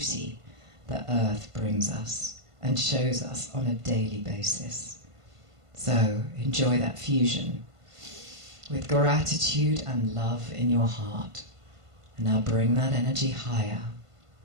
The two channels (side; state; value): left; late; 1.5 ms